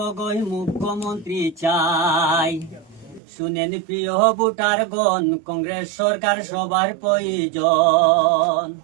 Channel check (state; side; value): drops out; left; at 3.2 s